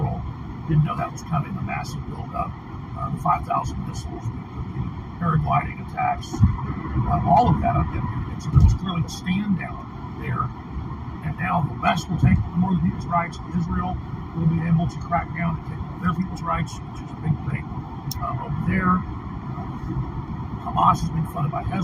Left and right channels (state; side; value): identical; both; correlation 1.00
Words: didn't know that was coming, the massive buildup, the 5,000 missiles, the paragliding attacks, all of that. And so there was clearly a stand down there. And now the West will take more of people's rights. Israel will be able to crack down and take more of their people's rights, which is a big thing over there. Hamas is being funded by